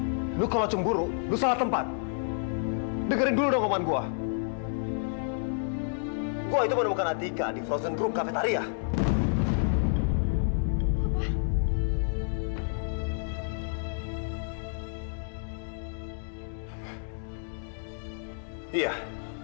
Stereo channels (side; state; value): right; silent; digital silence